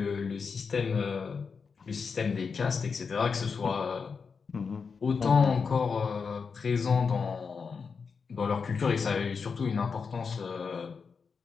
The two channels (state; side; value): quieter; right; 5.5 dB